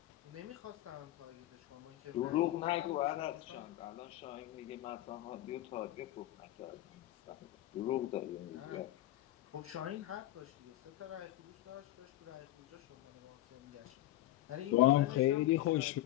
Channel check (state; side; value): quieter; right; 15.3 dB